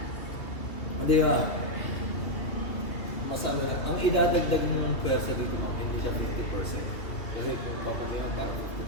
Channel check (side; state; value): right; late; 2.9 ms